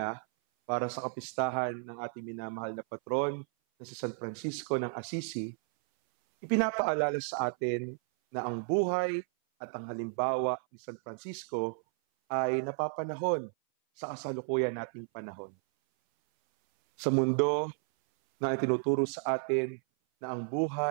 para sa kapistahan ng ating minamahal na patron na si San Francisco ng Assisi, ipinapaalala sa atin na ang buhay at ang halimbawa ni San Francisco ay napapanahon sa kasalukuyan nating panahon. Sa mundo na itinuturo sa atin na ang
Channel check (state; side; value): silent; left; 56 dB below the other